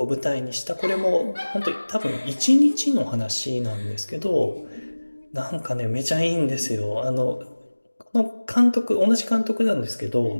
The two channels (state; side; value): inverted; both; correlation -1.00